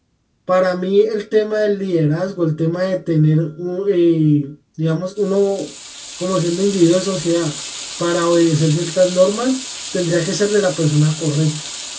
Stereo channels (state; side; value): identical; both; correlation 1.00